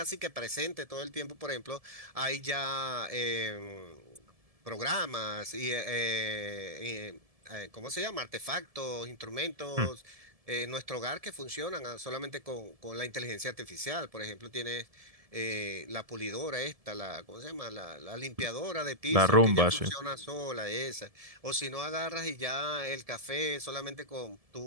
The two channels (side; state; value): left; late; 1.7 ms